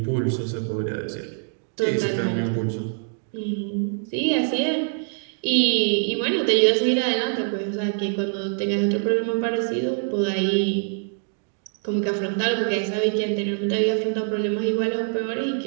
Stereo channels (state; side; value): silent; left; 56 dB below the other